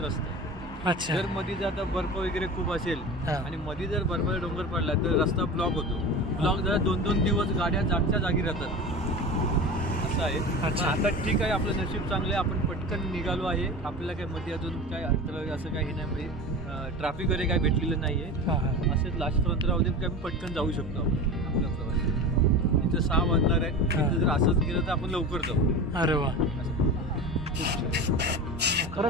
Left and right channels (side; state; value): both; normal; correlation 0.30